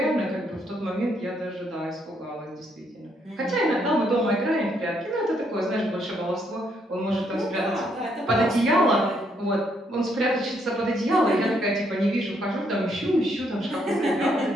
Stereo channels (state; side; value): normal; both; correlation 0.73